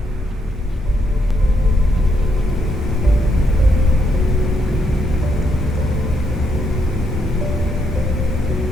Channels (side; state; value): both; normal; correlation 0.76